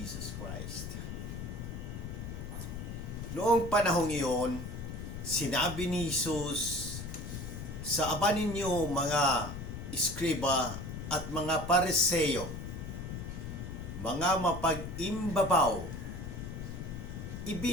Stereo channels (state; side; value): noise; left; rumble, 7 dB below the sound